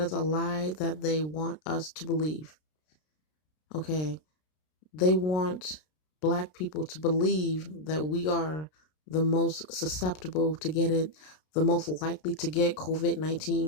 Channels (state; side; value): late; right; 33 ms